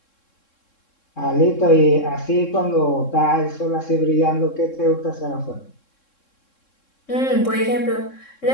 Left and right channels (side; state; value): right; late; 3.7 ms